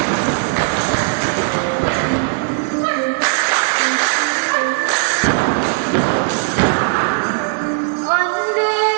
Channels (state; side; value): silent; left; 68 dB below the other